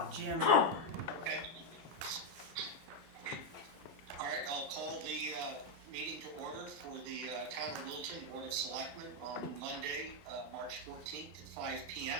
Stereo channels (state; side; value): late; left; 13 ms